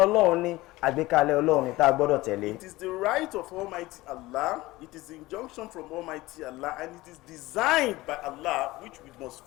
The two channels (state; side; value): quieter; right; 19.1 dB